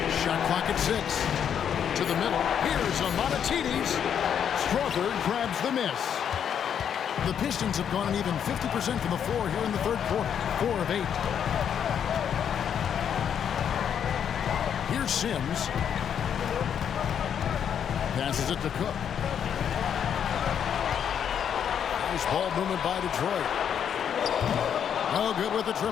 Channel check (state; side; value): quieter; right; 8.4 dB